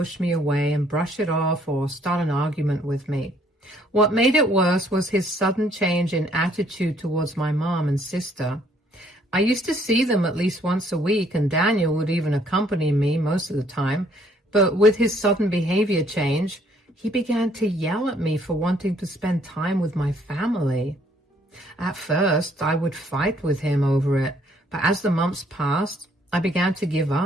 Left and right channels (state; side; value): normal; both; correlation 0.64